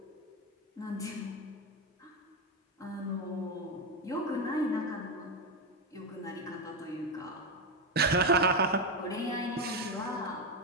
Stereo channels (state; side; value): normal; both; correlation 0.10